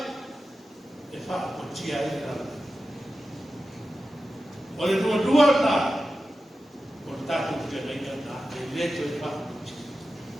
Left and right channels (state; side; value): normal; both; correlation 0.92